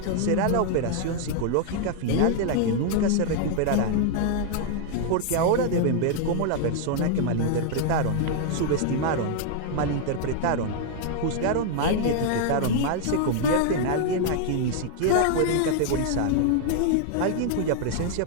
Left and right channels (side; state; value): both; different; correlation 0.00